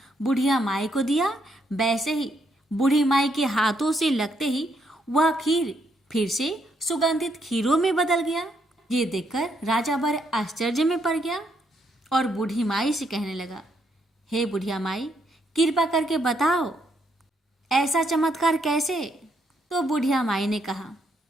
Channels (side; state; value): both; normal; correlation 0.75